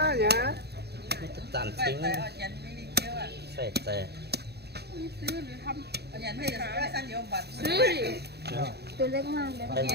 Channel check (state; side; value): late; left; 0.48 ms